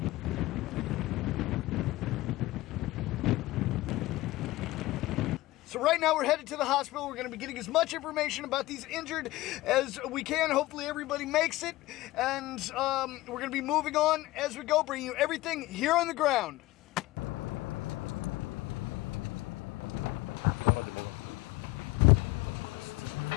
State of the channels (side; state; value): right; quieter; 18.2 dB